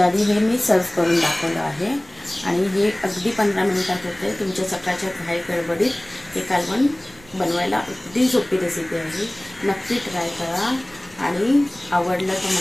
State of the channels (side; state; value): right; noise; rumble, 25 dB below the sound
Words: आधी हे मी सर्व करून दाखवलं आहे आणि हे अगदी 15 मिनिटात होते. तुमच्या सकाळच्या घाई गडबडीत हे कालवण बनवायला अगदी सोपी रेसिपी आहे. नक्की ट्राय करा आणि आवडलं तर